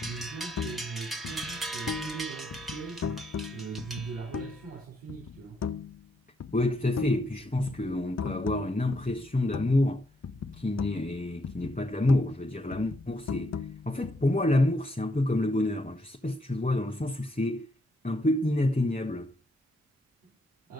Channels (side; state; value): both; normal; correlation 0.76